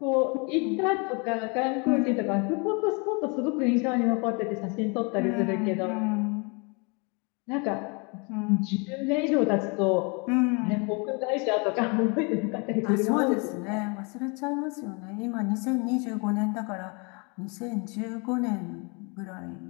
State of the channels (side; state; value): right; quieter; 32.2 dB